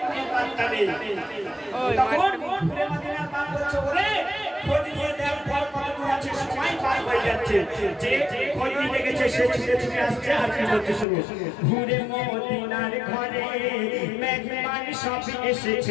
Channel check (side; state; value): right; drops out; at 11.1 s